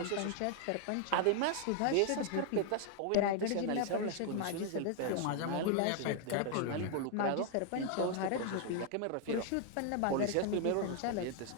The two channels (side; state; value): both; different; correlation 0.00